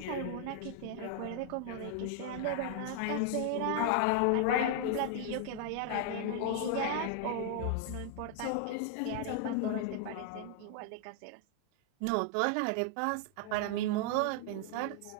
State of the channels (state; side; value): different; both; correlation 0.00